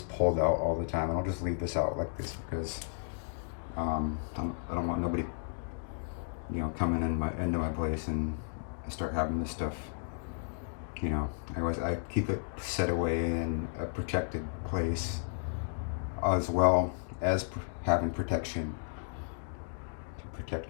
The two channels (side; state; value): right; silent; digital silence